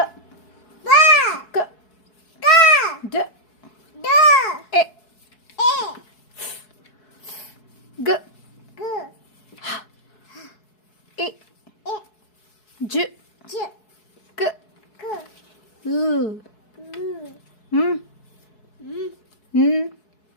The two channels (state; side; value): late; right; 4.7 ms